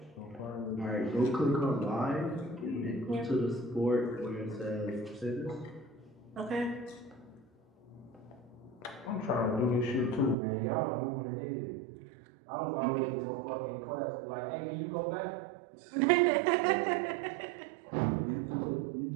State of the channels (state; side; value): drops out; left; at 10.4 s